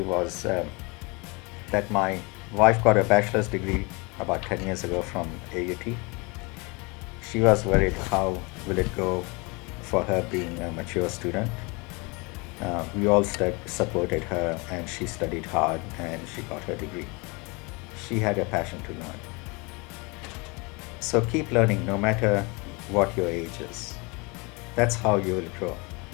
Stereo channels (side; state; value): right; quieter; 28.5 dB